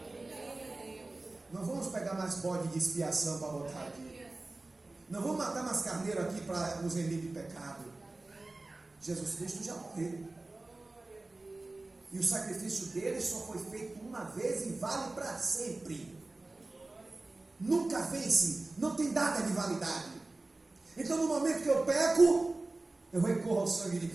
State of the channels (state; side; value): quieter; left; 3.1 dB